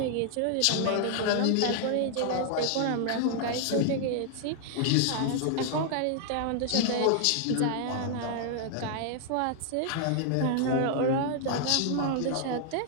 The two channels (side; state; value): both; different; correlation 0.00